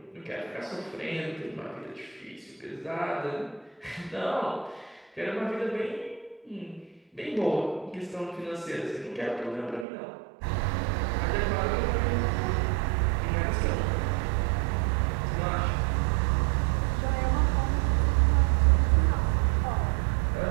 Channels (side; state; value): left; drops out; at 9.9 s